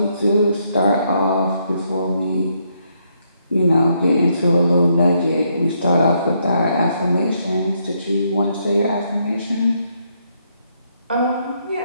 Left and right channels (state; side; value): inverted; both; correlation -0.75